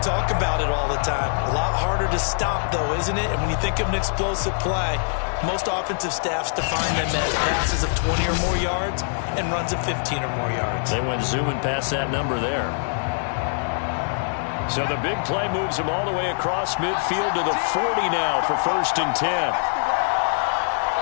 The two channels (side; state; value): right; silent; digital silence